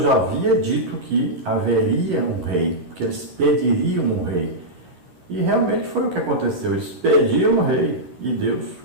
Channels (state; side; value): late; left; 11 ms